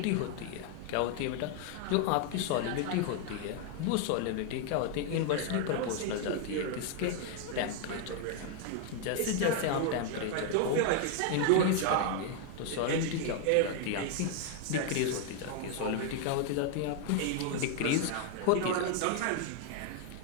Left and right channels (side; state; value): both; different; correlation 0.00